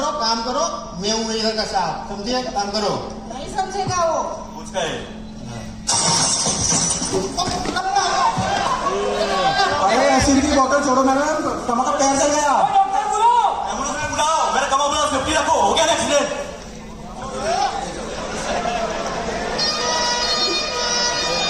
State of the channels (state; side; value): identical; both; correlation 1.00